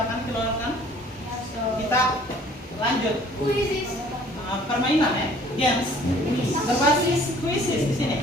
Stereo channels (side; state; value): both; normal; correlation 0.54